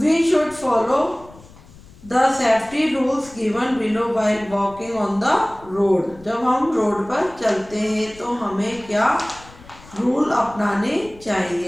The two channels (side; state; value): left; noise; rumble, 22 dB below the sound